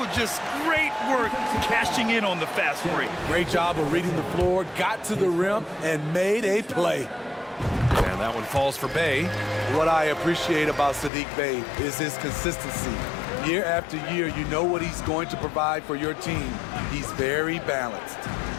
Just great work cashing in on the fast break. Great job of reading the floor, got to the rim, and made a play. And that one falls for Bey. What I appreciate about Saddiq Bey is his consistency. Year after year, you know what he's going to provide for your team. He's very balanced.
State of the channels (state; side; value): drops out; right; at 11.1 s